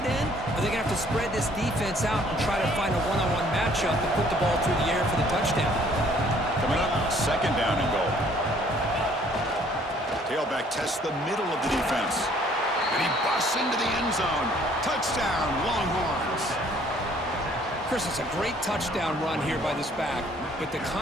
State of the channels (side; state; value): both; normal; correlation 0.60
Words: in, or they're going to have to spread this defense out and try to find a one-on-one matchup and put the ball through the air for the touchdown. Coming up, second down and goal. Tailback tests the middle of the defense. And he busts into the end zone. Touchdown, Longhorns. Chris, it's a great touchdown run here by this back, but the